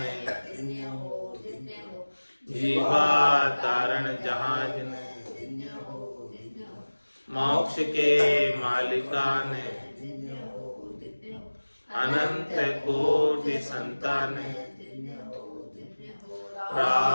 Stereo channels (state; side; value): inverted; both; correlation -1.00